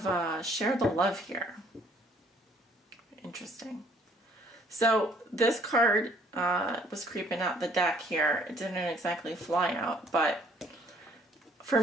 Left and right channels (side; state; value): both; normal; correlation 0.60